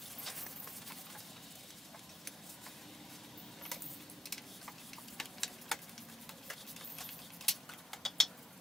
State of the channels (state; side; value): normal; both; correlation 0.85